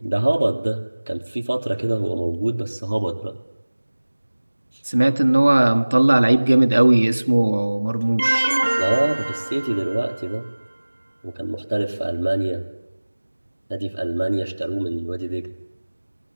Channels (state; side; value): inverted; both; correlation -1.00